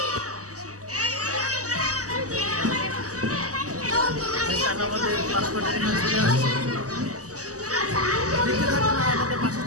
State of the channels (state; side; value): late; left; 0.66 ms